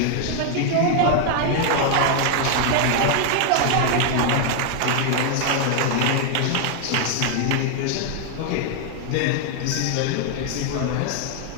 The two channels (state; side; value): different; both; correlation 0.00